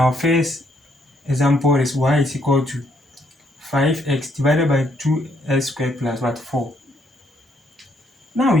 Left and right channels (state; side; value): normal; both; correlation 0.71